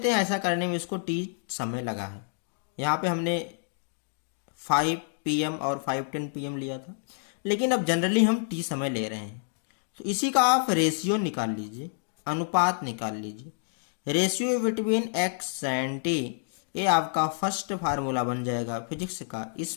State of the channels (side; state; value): right; silent; digital silence